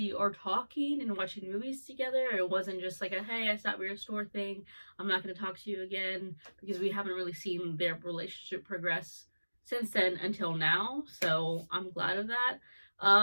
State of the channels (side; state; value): both; inverted; correlation -1.00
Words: are talking and watching movies together. It wasn't just like a, hey, I stopped at your store thing, I'm not going to talk to you again, because we haven't really seen their relationship progress since then until now. So I'm glad of that.